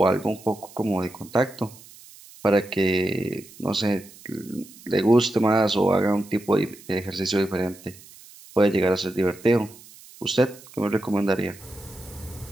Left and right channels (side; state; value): right; noise; hiss, 21 dB below the sound